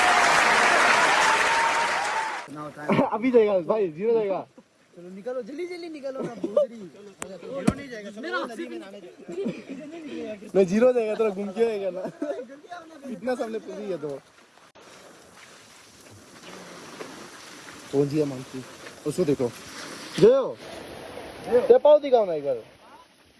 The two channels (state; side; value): identical; both; correlation 1.00